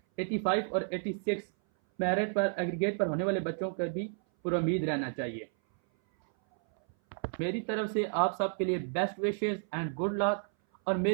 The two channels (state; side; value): silent; left; 57 dB below the other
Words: 85 और 86 मेरिट पर एग्रीगेट पर होने वाले बच्चों पर भी पुरुम्मीद रहना चाहिए। मेरी तरफ से आप सब के लिए best wishes and good luck. और